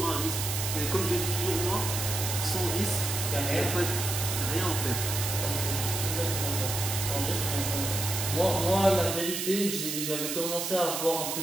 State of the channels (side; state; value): right; noise; hiss, 3 dB below the sound